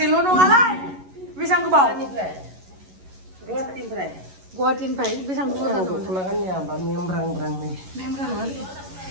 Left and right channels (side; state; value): left; late; 11 ms